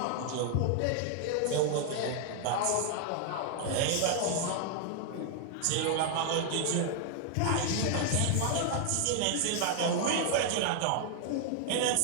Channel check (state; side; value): different; both; correlation 0.00